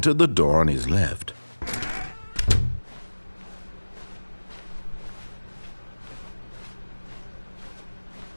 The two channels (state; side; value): inverted; both; correlation -1.00